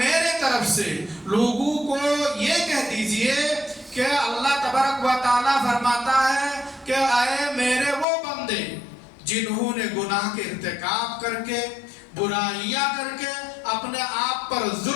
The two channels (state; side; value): drops out; right; at 8.1 s